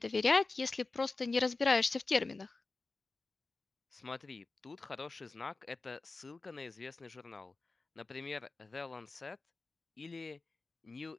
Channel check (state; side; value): quieter; right; 3.7 dB